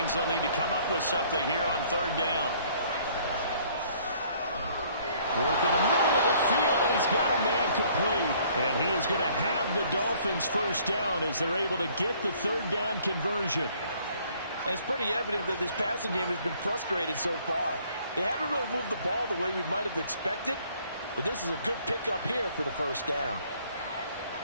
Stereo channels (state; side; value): inverted; both; correlation -0.60